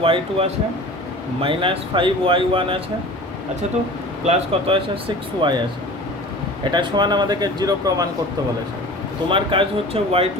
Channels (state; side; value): normal; both; correlation 0.40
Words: y2 আছে মাইনাস 5y1 আছে আচ্ছা তো প্লাস কত আছে 6y আছে এটা সমান আমাদেরকে 0 প্রমাণ করতে বলেছে তোমার কাজ হচ্ছে y2